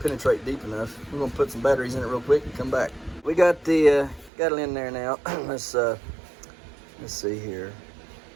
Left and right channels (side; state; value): left; drops out; at 4.3 s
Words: deep enough. We're gonna put some batteries in it real quick and come back. We got the got it in there now. Let's see here.